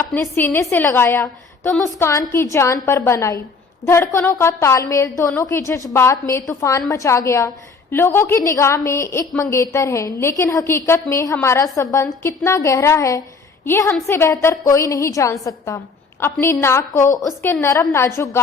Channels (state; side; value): quieter; right; 4.6 dB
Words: सीने से लगाया तो मुस्कान की जान पर बन आई। धड़कनों का तालमेल, दोनों के जज्बात में तूफान मचा गया। लोगों की निगाह में एक मंगेतर है, लेकिन हकीकत में हमारा संबंध कितना गहरा है ये हमसे बेहतर कोई नहीं जान सकता। अपनी नाक को उसके नरम नाजुक